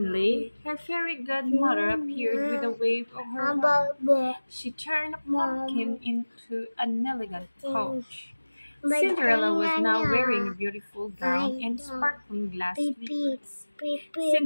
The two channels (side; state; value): both; inverted; correlation -1.00